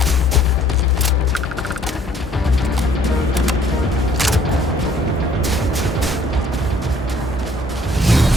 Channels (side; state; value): both; normal; correlation 0.59